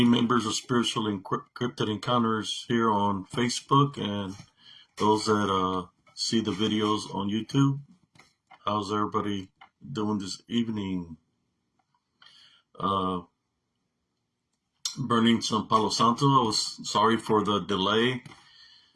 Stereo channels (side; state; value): both; identical; correlation 1.00